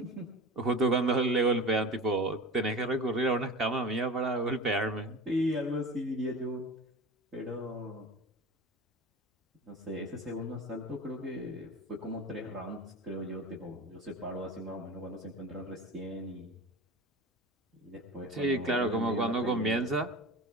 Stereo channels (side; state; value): both; normal; correlation 0.34